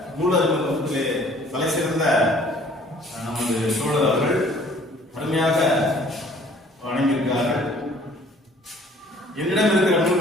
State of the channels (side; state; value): both; normal; correlation 0.55